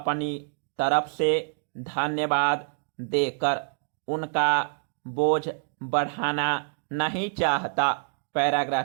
तरफ से धन्यवाद देकर उनका बोझ बढ़ाना नहीं चाहता।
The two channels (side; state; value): left; silent; digital silence